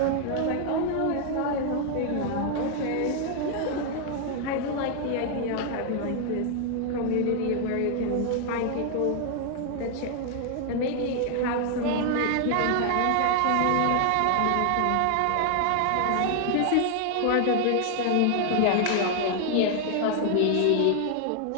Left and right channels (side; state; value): both; different; correlation 0.00